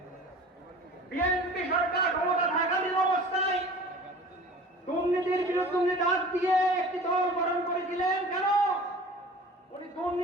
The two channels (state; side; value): normal; both; correlation 0.42